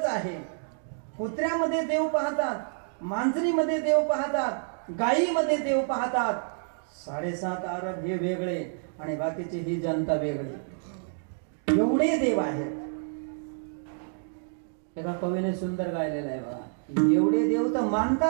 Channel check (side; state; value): left; silent; digital silence